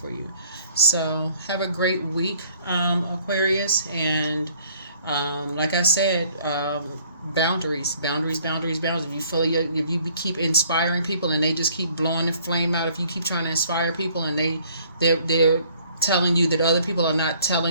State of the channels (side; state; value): both; inverted; correlation -0.59